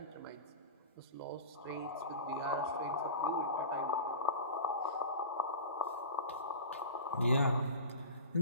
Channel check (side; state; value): both; inverted; correlation -0.33